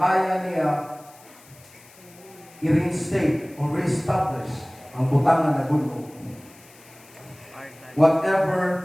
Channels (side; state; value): left; noise; hiss, 24 dB below the sound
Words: kaya niya i-reinstate or re-establish ang butangan na gulo.